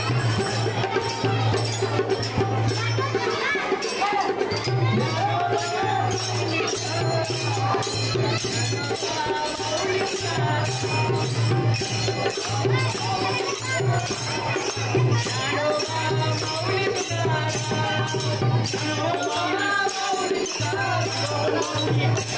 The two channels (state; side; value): identical; both; correlation 1.00